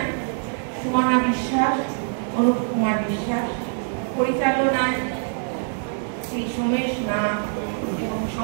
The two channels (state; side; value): silent; left; 63 dB below the other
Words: সুমনা বিশ্বাস, অনুপ কুমার বিশ্বাস, পরিচালনায় শ্রী সোমেশ নাথ এবং